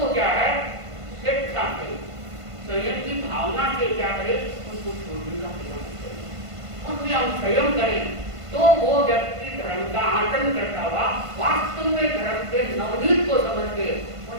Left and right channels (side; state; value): left; late; 1.5 ms